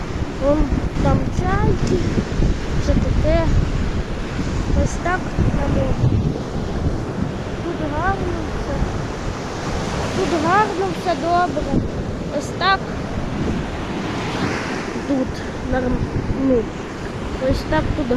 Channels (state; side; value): identical; both; correlation 1.00